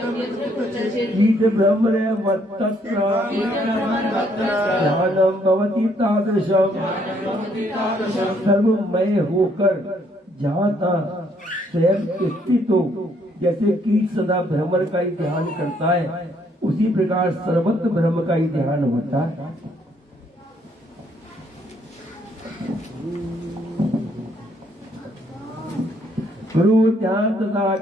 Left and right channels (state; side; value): normal; both; correlation 0.69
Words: ब्रह्मण्यमत्तत्र ध्यानं भवति तादृशम्। सर्वमय होकर जहाँ तहाँ स्वयं स्थित हो, जैसे कीट सदा भ्रमर का ही ध्यान करता है, उसी प्रकार सर्वत्र ब्रह्म का ही ध्यान होता है। गुरु ध्यान तथा